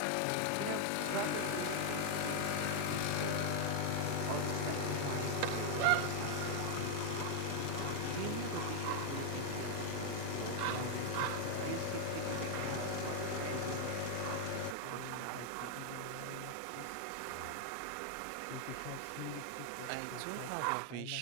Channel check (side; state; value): both; different; correlation 0.00